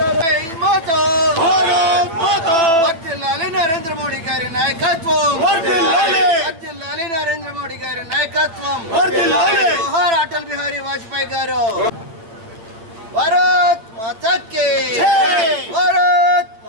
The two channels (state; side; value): late; left; 9.0 ms